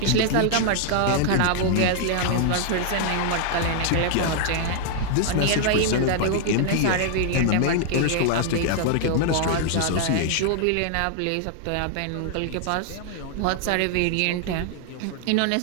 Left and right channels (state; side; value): different; both; correlation 0.00